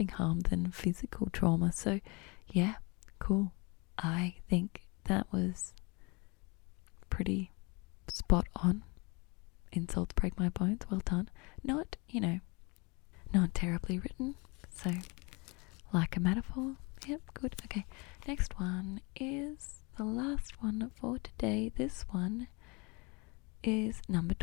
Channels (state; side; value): quieter; right; 28.5 dB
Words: harm than physical trauma. So yeah, cool. I think that was pretty spot on. Insults break my bones. Well done. Not terribly written. So, like a metaphor. Yep, good. Okay, next one is the last one for today. This one is number